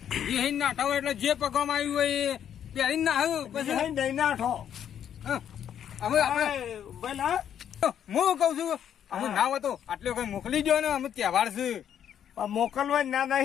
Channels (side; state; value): right; quieter; 9.4 dB